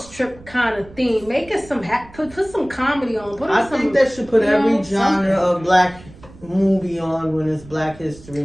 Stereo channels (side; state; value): right; noise; rumble, 21 dB below the sound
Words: trip kind of theme. Make it some put some comedy on. I think they should put every genre of black movie on when it's Black History